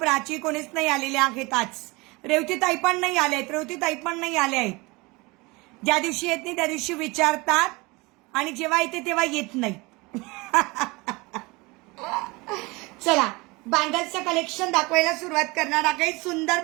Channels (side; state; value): left; quieter; 24.7 dB